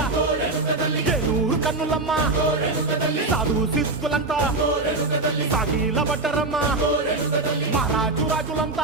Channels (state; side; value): quieter; left; 3.1 dB